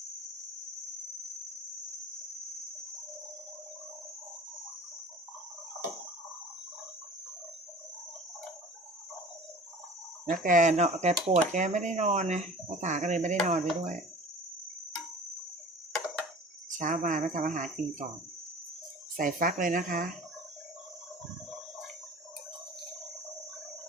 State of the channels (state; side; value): normal; both; correlation 0.41